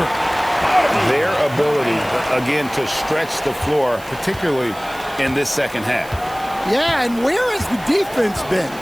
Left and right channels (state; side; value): noise; right; hiss, 20 dB below the sound